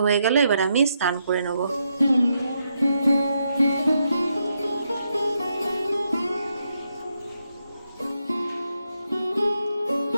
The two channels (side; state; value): both; inverted; correlation -0.81